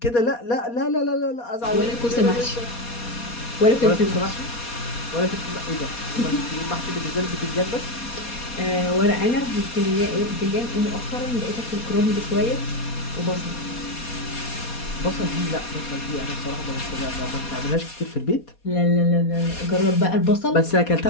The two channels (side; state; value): right; late; 4.2 ms